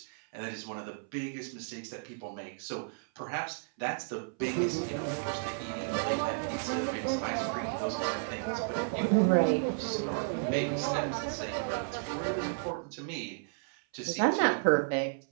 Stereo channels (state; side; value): silent; left; 56 dB below the other